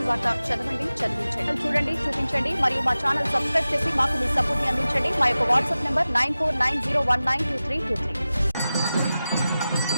వార్త చదవండి, చదివించండి, చూడండి, చూపించండి మరియు మా ఛానల్ సబ్స్క్రైబ్ చేసి మాకు మీ సపోర్ట్ ని అందించండి. మా యొక్క వాట్సాప్ నంబర్ 9490192323.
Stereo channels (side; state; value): both; inverted; correlation -0.95